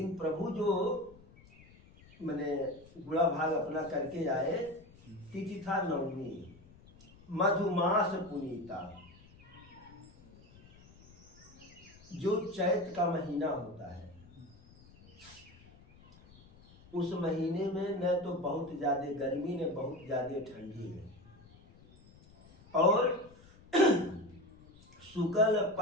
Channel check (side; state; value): left; noise; rumble, 24 dB below the sound